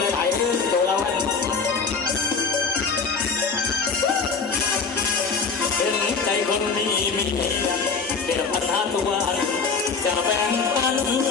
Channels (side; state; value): right; quieter; 5.1 dB